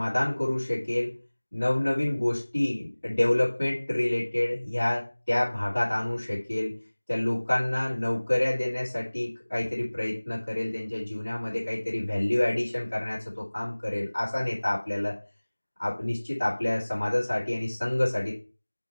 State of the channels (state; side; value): inverted; both; correlation -1.00